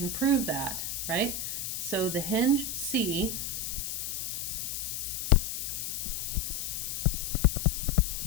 prove that, right? So the hinge C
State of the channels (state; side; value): noise; left; hiss, 3 dB below the sound